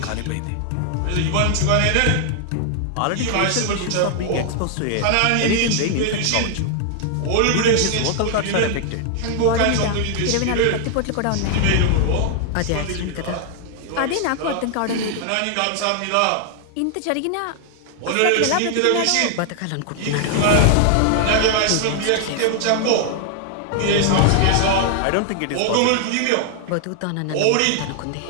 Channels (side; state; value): both; different; correlation 0.00